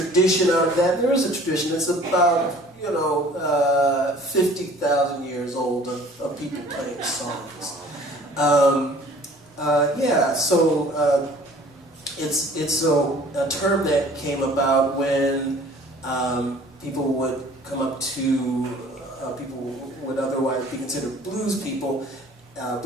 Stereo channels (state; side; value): normal; both; correlation 0.51